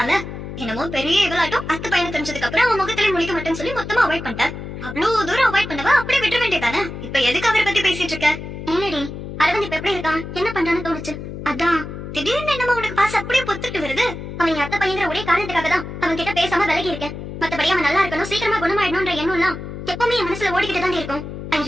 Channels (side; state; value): left; noise; hum, 9 dB below the sound